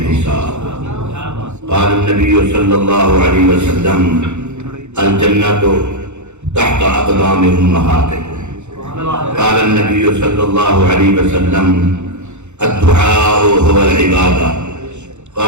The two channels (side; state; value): left; late; 0.83 ms